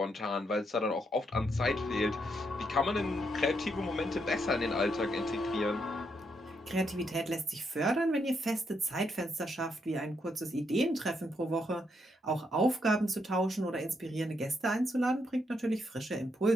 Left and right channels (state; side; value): normal; both; correlation 0.78